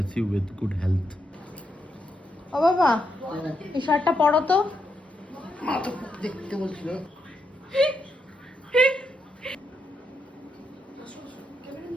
you with good health. ও বাবা এই শার্টটা পরো তো। মা তো দেখতে বলছিল।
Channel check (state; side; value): normal; both; correlation 0.81